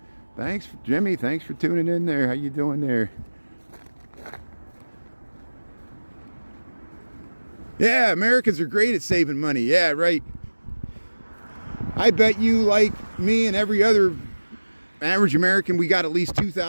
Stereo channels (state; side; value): inverted; both; correlation -1.00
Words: Thanks, Jimmy. Thanks for tuning in there. How you doing there? Yeah, Americans are great at saving money. Yeah, right. I bet you, like me and every other average American, we got at least